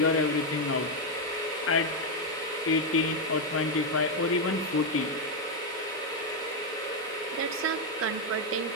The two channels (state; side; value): normal; both; correlation 0.03